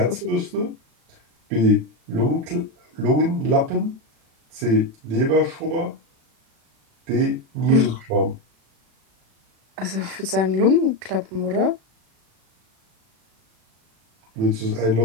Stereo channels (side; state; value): left; late; 36 ms